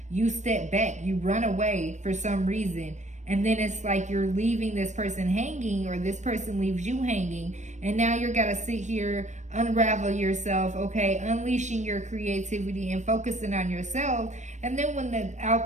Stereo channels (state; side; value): late; left; 0.34 ms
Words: You step back, you run away for some reason, and then it's like you're leaving this person hanging, or this person leaves you hanging, and now you're gotta sit here, unravel yourself, okay, unleashing your creativity and focusing on yourself. And then